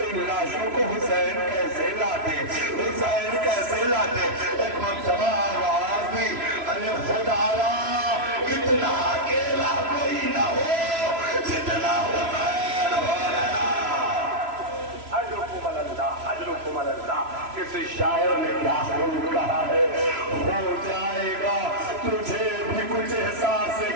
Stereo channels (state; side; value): late; left; 3.0 ms